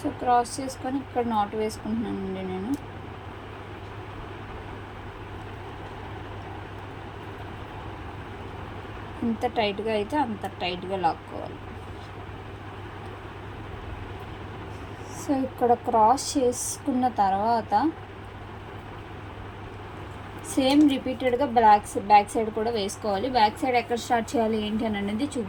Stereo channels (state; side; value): identical; both; correlation 1.00